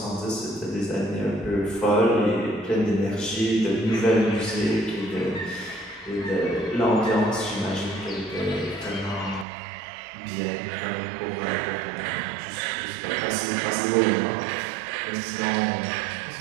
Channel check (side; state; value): left; drops out; at 9.5 s